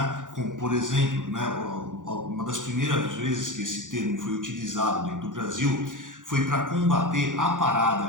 como, por exemplo, né, uma das primeiras vezes que esse termo foi utilizado dentro do Brasil foi para combater a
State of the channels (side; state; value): left; late; 0.88 ms